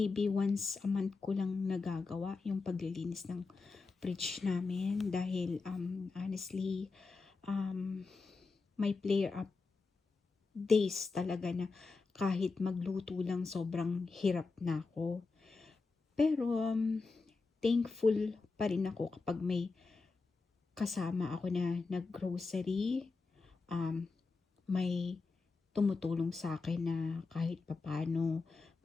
once a month ko lang nagagawa yung paglilinis ng fridge namin dahil honestly, may flare up days talaga na kahit magluto lang sobrang hirap na ako. Pero thankful pa rin ako kapag may kasama ako na nag-grocery, may tumutulong sa akin na kahit papaano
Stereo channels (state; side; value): quieter; right; 4.1 dB